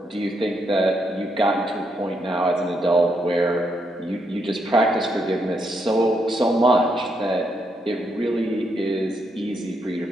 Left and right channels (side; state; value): both; normal; correlation 0.78